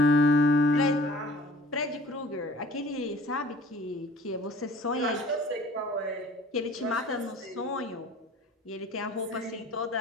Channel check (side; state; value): both; normal; correlation 0.48